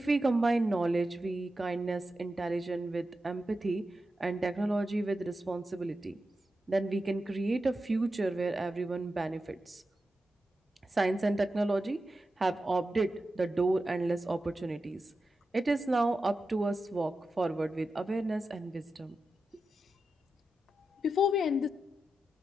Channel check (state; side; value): normal; both; correlation 0.90